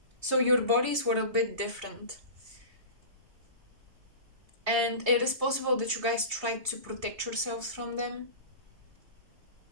So your bodies were a bit different. And it is possible that you guys tried to protect yourselves from them.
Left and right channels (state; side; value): late; left; 3.2 ms